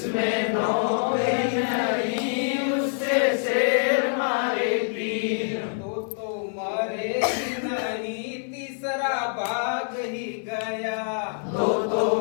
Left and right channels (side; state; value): right; silent; digital silence